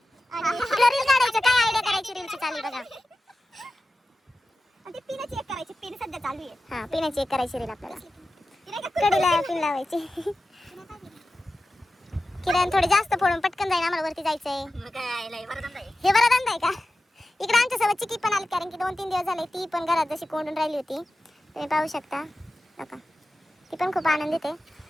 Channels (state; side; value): normal; both; correlation 0.93